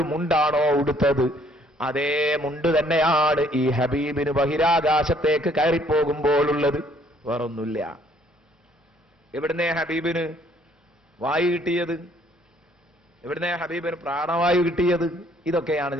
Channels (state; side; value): normal; both; correlation 0.62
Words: മുണ്ടാണോ ഉടുത്തത്, അതേ മുണ്ട് തന്നെയാണ് ഈ ഹബീബിന് ബഹിരാകാശത്തേക്ക് കയറിപ്പോകുമ്പോഴുള്ളത്. വേറൊന്നുമില്ല. എവിടുന്നേ ഹബീബിന് വായു കിട്ടിയത്? എവിടുന്നേ ഹബീബിന് പ്രാണവായു കിട്ടിയത്? ഇതൊക്കെയാണ്